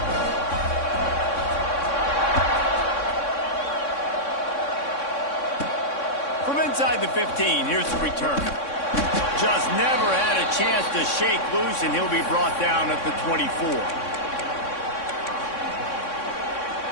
From inside the 15, here's the return. Just never had a chance to shake loose, and he'll be brought down at the 24.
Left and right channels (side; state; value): right; late; 3.6 ms